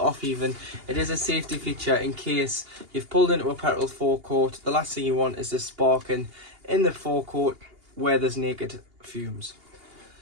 even. It is a safety feature in case you've pulled into a petrol forecourt. The last thing you want is this sparking in the forecourt where there's naked fumes.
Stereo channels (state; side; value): late; left; 2.8 ms